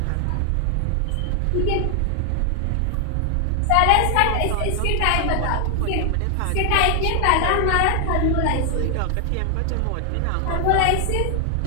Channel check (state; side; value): different; both; correlation 0.00